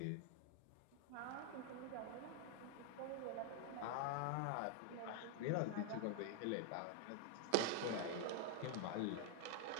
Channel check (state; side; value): different; both; correlation 0.00